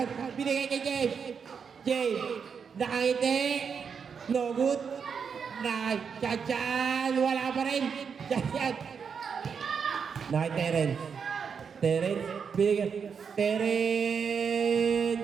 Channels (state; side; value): quieter; left; 6.4 dB